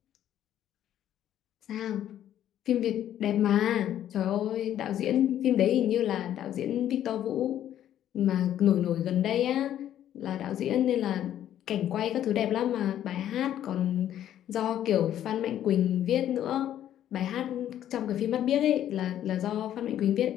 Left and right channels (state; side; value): quieter; right; 11.2 dB